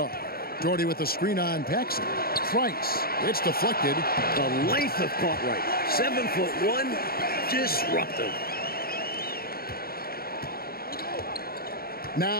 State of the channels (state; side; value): late; right; 0.44 ms